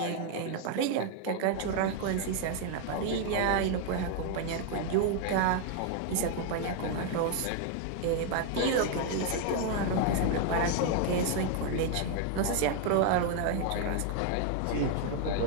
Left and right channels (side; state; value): both; different; correlation 0.00